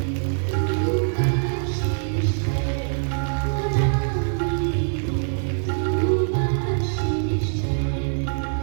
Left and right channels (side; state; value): left; silent; digital silence